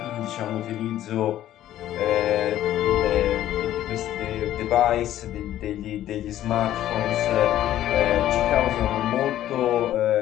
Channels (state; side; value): quieter; right; 12.7 dB